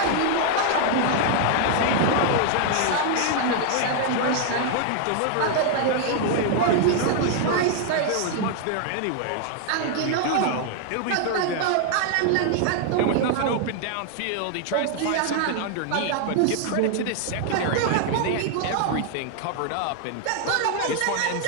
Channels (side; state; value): both; different; correlation 0.00